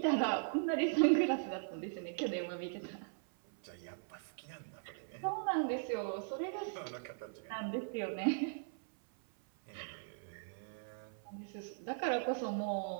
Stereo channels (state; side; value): silent; left; 52 dB below the other